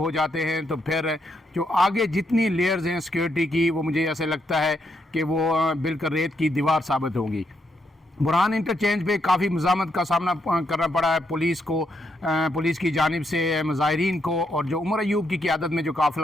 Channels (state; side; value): normal; both; correlation 0.78